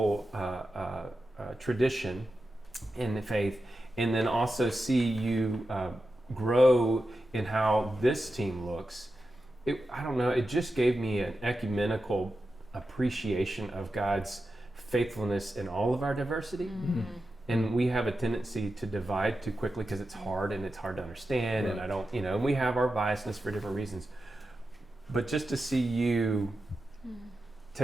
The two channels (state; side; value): normal; both; correlation 0.91